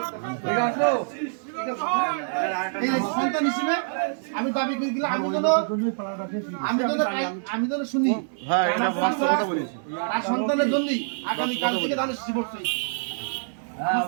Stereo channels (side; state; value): left; silent; digital silence